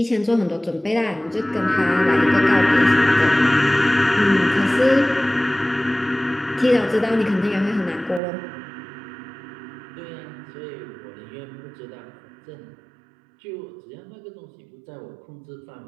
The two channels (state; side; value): drops out; left; at 8.2 s